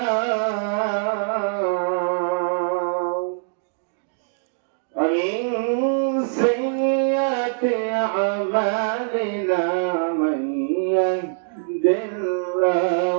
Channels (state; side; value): silent; left; digital silence